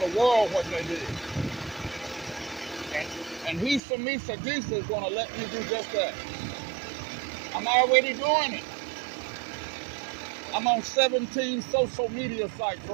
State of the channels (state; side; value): drops out; left; at 3.8 s